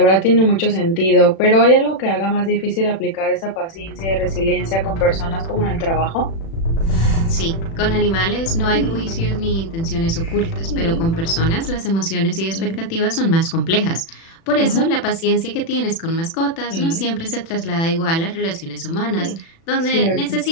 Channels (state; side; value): late; right; 36 ms